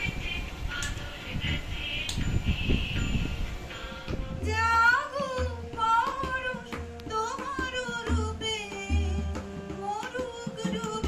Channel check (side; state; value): both; identical; correlation 1.00